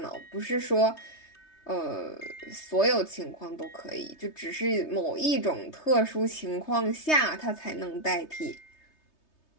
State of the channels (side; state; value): right; late; 3.2 ms